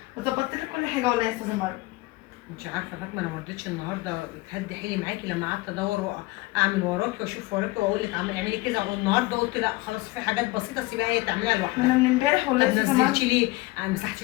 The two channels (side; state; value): right; quieter; 21.3 dB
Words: وظبطت لك كل حاجه والله يا استاذه مروه. انت عارفه فاطمه، انا ما رضيتش النهارده تهدي حيلي معاكي لما قعدت ادور واعمل وراكي واشوف وراكي واقول لك اعملي كذا، والنهارده قلت لا خلاص في حاجات بسيطه سيبها هي تعملها انا لوحدها. من امبارح والله طب يا استاذه مروه. نزلتي ليه؟